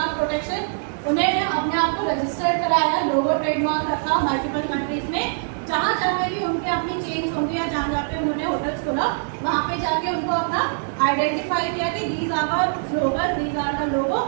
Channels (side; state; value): left; silent; 62 dB below the other